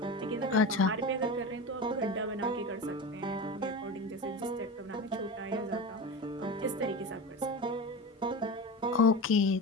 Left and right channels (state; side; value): normal; both; correlation 0.26